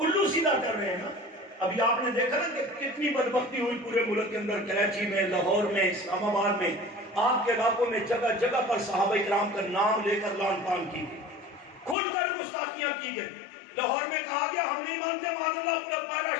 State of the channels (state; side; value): drops out; right; at 12.0 s